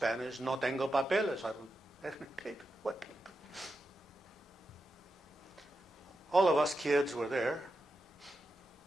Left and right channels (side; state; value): both; normal; correlation 0.88